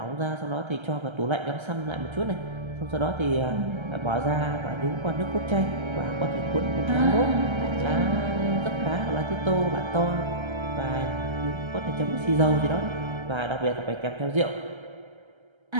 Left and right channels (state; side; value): late; left; 1.3 ms